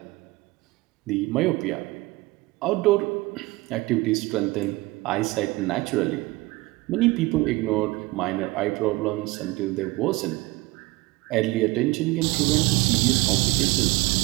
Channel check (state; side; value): quieter; left; 21.3 dB